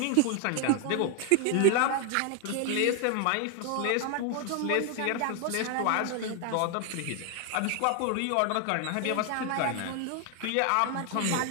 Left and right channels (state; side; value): different; both; correlation 0.00